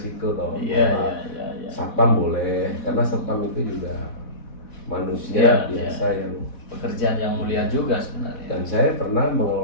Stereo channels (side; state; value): right; late; 4.1 ms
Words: toh. Iya. Satpam boleh, karena satpam itu juga manusia biasa yang pekerjaan yang mulia juga sebenarnya. Dan saya pernah